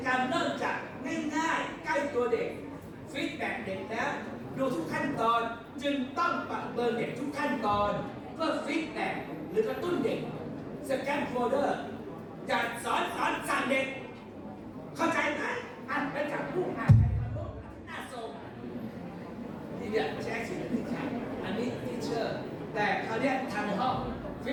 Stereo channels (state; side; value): identical; both; correlation 1.00